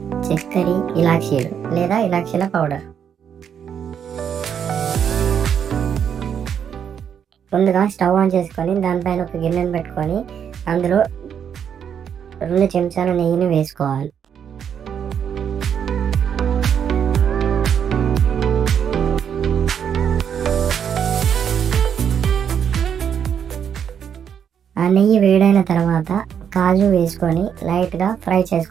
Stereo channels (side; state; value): left; quieter; 8.1 dB